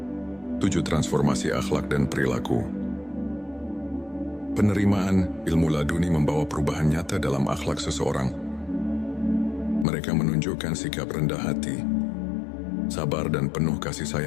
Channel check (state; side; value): drops out; right; at 9.9 s